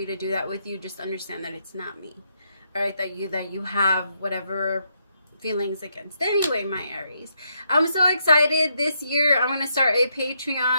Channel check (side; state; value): both; inverted; correlation -0.78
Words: to do that with you. Just understand that it's not me, all right? That you have whatever feelings against. Anyway, my Aries, I'm so excited. This year I'm gonna start a